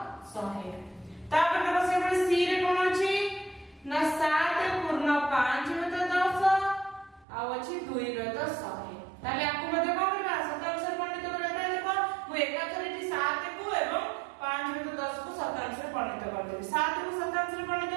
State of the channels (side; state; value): left; drops out; at 7.2 s